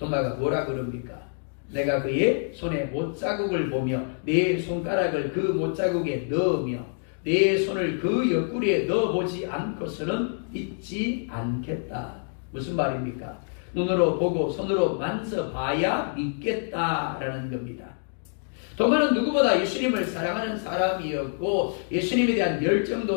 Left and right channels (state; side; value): silent; right; digital silence